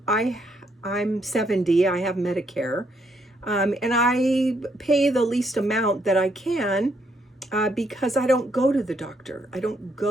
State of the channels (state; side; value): normal; both; correlation 0.73